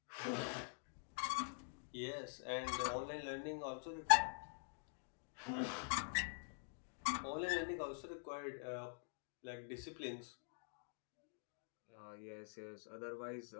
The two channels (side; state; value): right; silent; digital silence